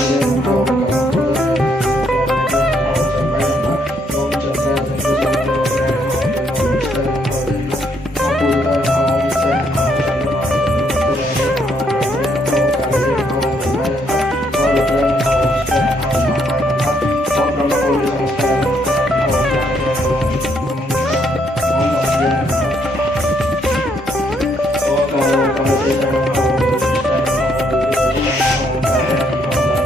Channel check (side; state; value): both; normal; correlation 0.71